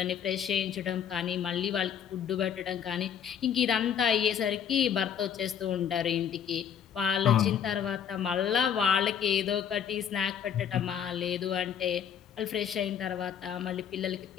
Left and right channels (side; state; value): right; quieter; 8.4 dB